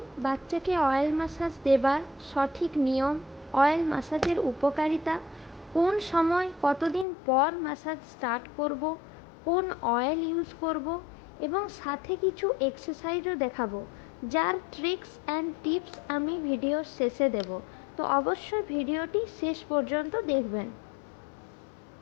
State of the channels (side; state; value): right; drops out; at 7.1 s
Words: বাচ্চাকে অয়েল ম্যাসাজ দেবার সঠিক নিয়ম, অয়েল ম্যাসাজের উপকারিতা, কোন সময় কতদিন পর ম্যাসাজ স্টার্ট করব, কোন অয়েল ইউজ করব এবং সাথে কিছু এক্সারসাইজও দেখাবো, যার ট্রিক্স অ্যান্ড টিপস আমি ভিডিওর শেষে দেব। তো অবশ্যই ভিডিওটি শেষ পর্যন্ত দেখবেন।